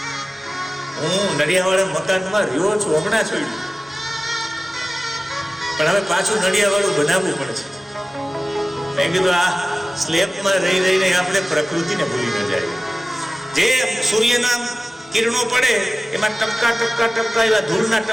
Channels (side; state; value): both; normal; correlation 0.97